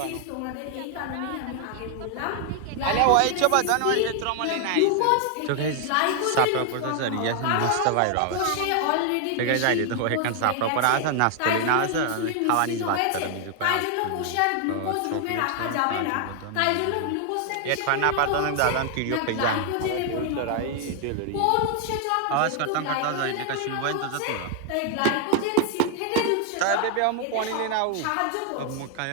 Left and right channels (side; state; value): both; different; correlation 0.00